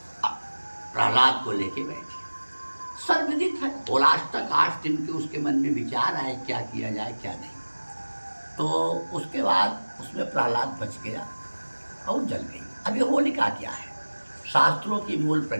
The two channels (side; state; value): both; inverted; correlation -1.00